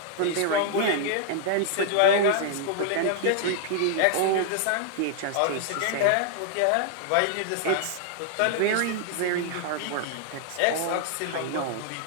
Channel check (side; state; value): both; different; correlation -0.01